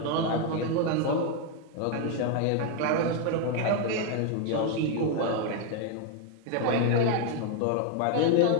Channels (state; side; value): different; both; correlation 0.01